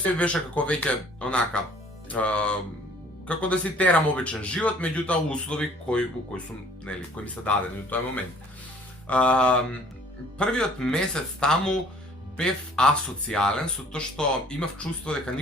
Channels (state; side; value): normal; both; correlation 0.55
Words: се беше како веќе онака како да си терам обичен живот, меѓутоа услови кои сум, нели, кои ми се дадени во тој момент. Првиот месец таму бев асоцијален со тоа што имав чувство дека